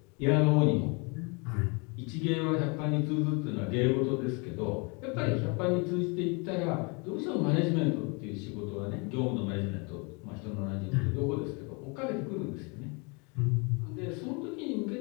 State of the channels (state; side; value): quieter; right; 31.9 dB